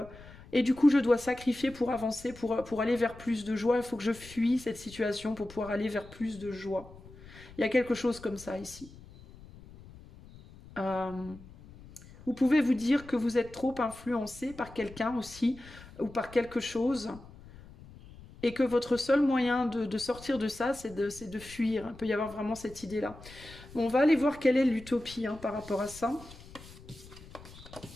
et du coup je dois sacrifier pour avancer, pour aller vers plus de joie. Il faut que je fuis cette situation pour pouvoir aller vers plus de joie. Il y a quelque chose comme ça ici. Euh, Vous pouvez vous dire que vous êtes trop influencé par quelqu'un aussi ou par quelque chose et que votre seul moyen de sortir de ça, c'est de fuir. Il peut y avoir vraiment cette idée-là. Bon, on va aller voir quelle est l'utopie hein, par rapport à ça.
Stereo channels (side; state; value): left; noise; rumble, 19 dB below the sound